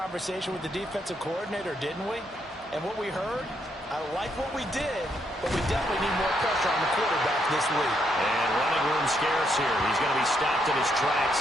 with the defensive coordinator, didn't we? And what we heard, I like what we did, but we definitely need more pressure on the quarterback this week. And running room scarce here. He's going to be stopped in his tracks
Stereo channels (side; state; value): both; normal; correlation 0.76